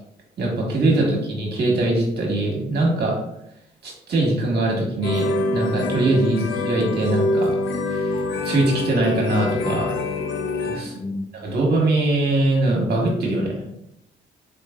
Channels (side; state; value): both; normal; correlation 0.65